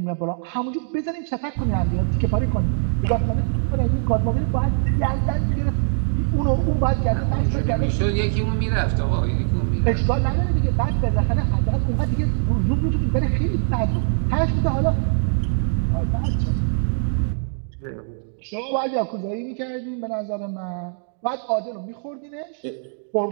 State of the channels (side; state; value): left; silent; digital silence